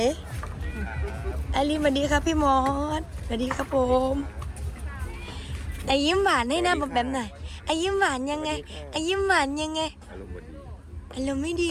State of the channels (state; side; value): identical; both; correlation 1.00